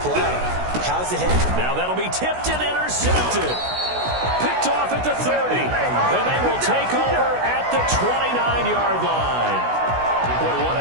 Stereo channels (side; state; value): left; late; 16 ms